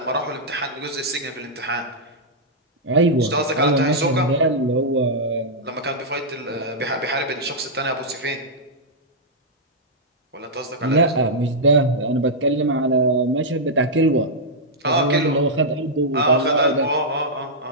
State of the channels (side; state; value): both; normal; correlation -0.08